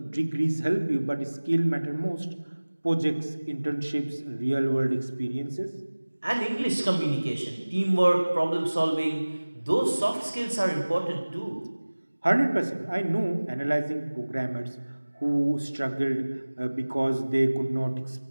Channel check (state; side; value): inverted; both; correlation -1.00